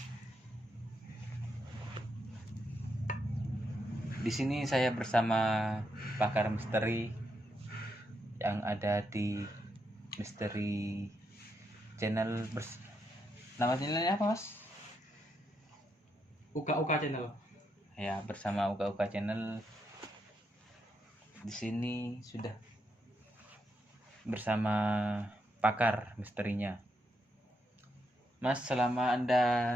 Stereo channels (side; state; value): both; normal; correlation 0.81